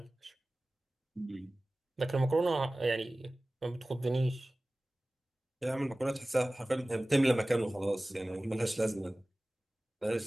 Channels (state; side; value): normal; both; correlation 0.98